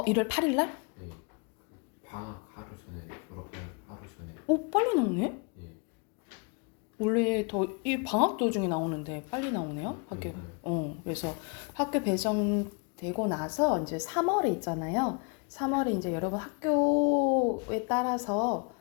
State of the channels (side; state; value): right; quieter; 33.7 dB